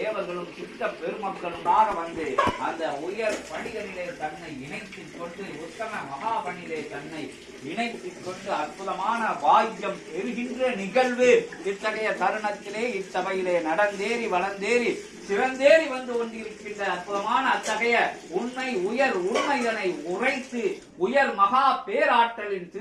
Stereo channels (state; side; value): identical; both; correlation 1.00